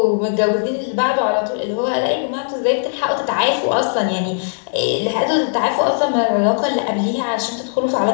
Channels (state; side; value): silent; right; digital silence